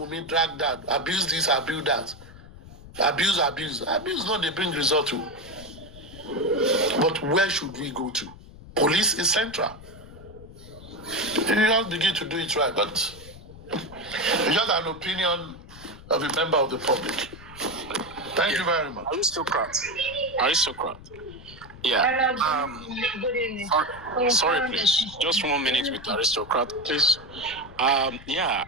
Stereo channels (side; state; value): left; noise; rumble, 18 dB below the sound